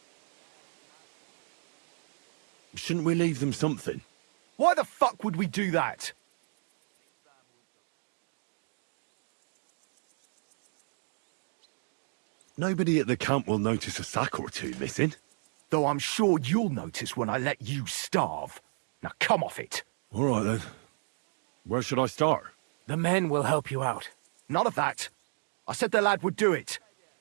shouldn't we leave them something? Why the fuck would we do that? Nobody at the camp will notice a sack or two missing. Though I'm sure you'll notice when I let you starve. Now come off it. All right then. Where should I start? The men will help you out. None of that. I said the lad would do it.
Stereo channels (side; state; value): left; silent; 56 dB below the other